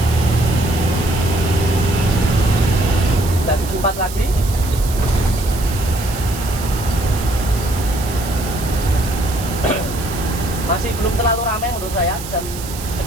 Dan 4 lagi. Masih belum terlalu ramai menurut saya, jam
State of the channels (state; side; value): noise; right; hiss, 12 dB below the sound